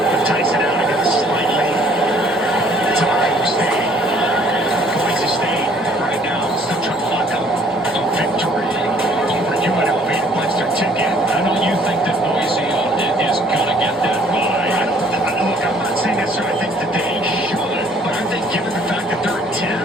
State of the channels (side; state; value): both; normal; correlation 0.59